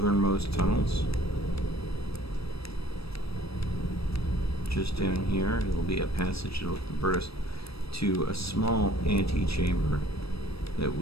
tunnels. Just down here, it will be a passage that will convert us to a small antechamber that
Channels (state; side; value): late; right; 0.77 ms